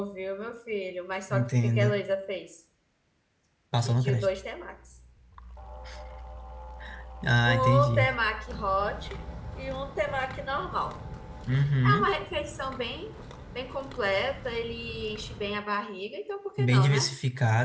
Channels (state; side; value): identical; both; correlation 1.00